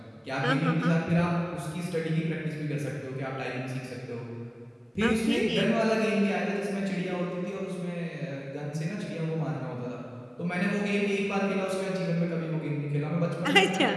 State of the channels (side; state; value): both; identical; correlation 1.00